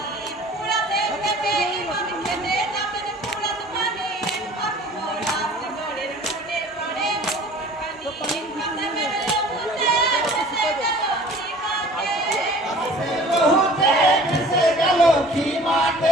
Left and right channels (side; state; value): both; normal; correlation 0.47